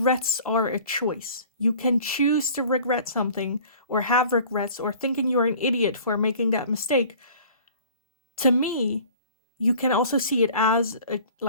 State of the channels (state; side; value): inverted; both; correlation -0.47